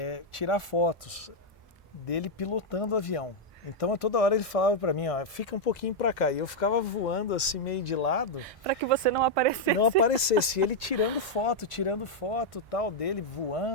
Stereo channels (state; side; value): normal; both; correlation -0.02